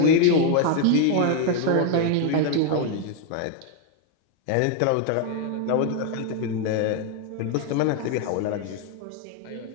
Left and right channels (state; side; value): different; both; correlation 0.01